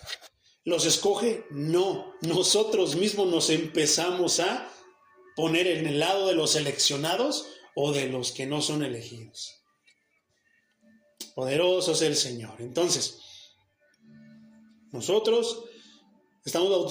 ¿Los escoge? No. Nosotros mismos nos empezamos a poner en el lado de los seleccionados o de los que no son elegidos. Poderoso es el Señor. Entonces, nosotros estamos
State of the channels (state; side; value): identical; both; correlation 1.00